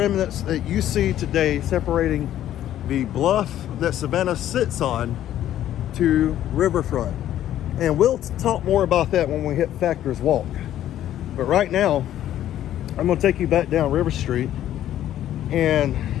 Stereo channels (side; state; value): right; quieter; 12.1 dB